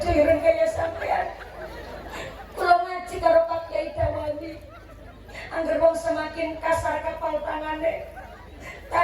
ireng kayak sampean. Kula ngaji karo Pak Kiai Dawani. Angger wong semakin kasar kapal tangane,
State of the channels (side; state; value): both; identical; correlation 1.00